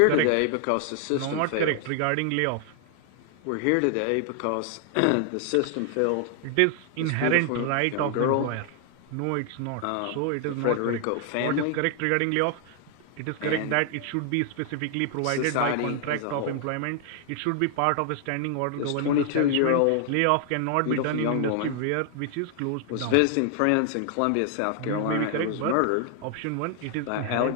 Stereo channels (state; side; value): different; both; correlation 0.00